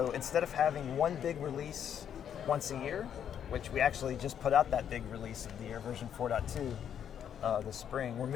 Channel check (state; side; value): quieter; right; 8.9 dB